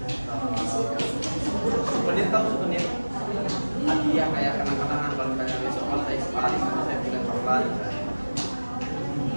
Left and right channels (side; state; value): both; inverted; correlation -1.00